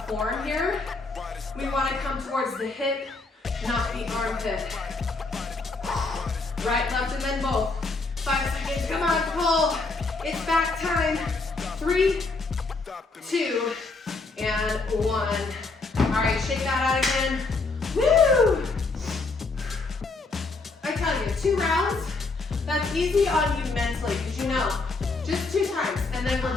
form here. We want to come towards the hip, not the armpit. Right, left, and then both. 5 seconds, come on, pull. It's back time. 3, 2, and 1. All right, shake that out again. Woo! I tell you, 2 rounds, that's easy on you mentally, because you know, just 2 times, and then we're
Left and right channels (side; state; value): right; quieter; 3.7 dB